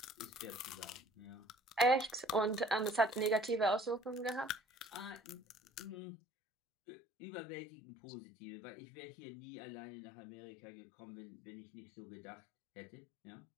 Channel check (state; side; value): drops out; right; at 6.0 s